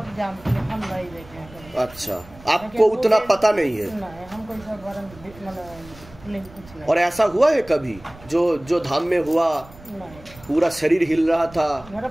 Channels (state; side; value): noise; right; rumble, 21 dB below the sound